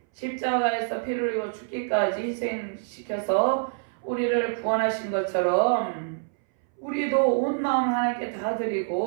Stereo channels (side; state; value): left; silent; 61 dB below the other